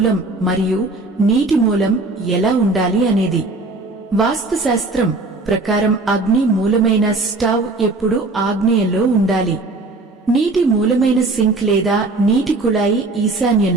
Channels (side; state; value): left; quieter; 3.3 dB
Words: మరియు నీటి మూలం ఎలా ఉండాలి అనేది. వాస్తుశాస్త్రం ప్రకారం అగ్ని మూలమైన స్టవ్ ఎప్పుడూ ఆగ్నేయంలో ఉండాలి. నీటి మూలమైన సింక్ లేదా నీటి కుళాయి